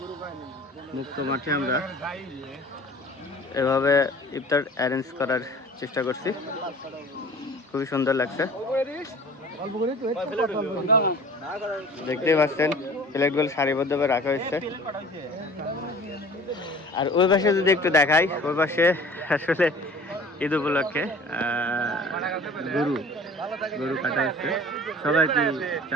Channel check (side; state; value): both; normal; correlation 0.45